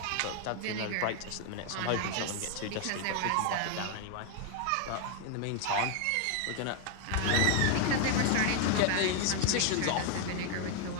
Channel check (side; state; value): both; different; correlation 0.00